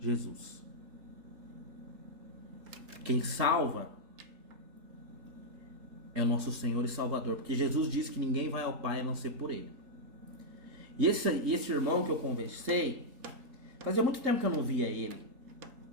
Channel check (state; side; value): late; left; 3.8 ms